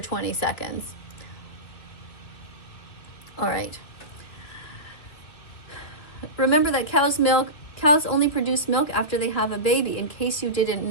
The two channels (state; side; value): late; right; 2.9 ms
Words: seconds. All right. Remember that cows only produce milk after they have a baby, in case you didn't